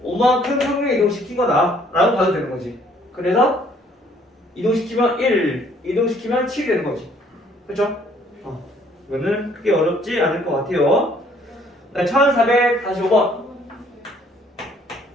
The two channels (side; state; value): both; normal; correlation 0.62